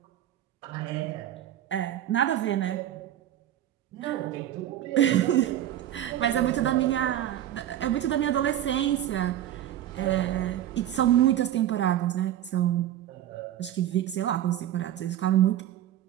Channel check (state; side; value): quieter; left; 11.9 dB